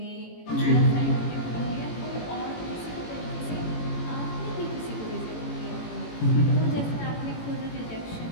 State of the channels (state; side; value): late; right; 18 ms